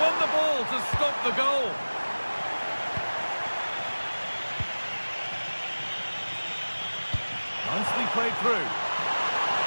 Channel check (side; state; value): both; inverted; correlation -1.00